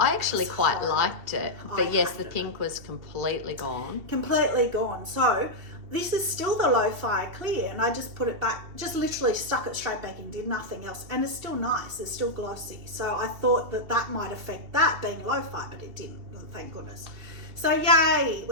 actually quite liked it, but yes, the pink was completely gone. Completely gone. So this is still the low fire clear, and I just put it back, just literally stuck it straight back in, did nothing else, and it's still nice, it's still glossy. So I thought that might affect that being low fire, but it didn't, thank goodness. So yay,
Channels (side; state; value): left; late; 2.7 ms